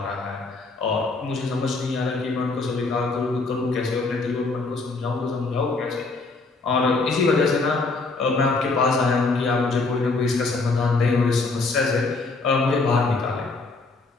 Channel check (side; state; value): right; quieter; 3.7 dB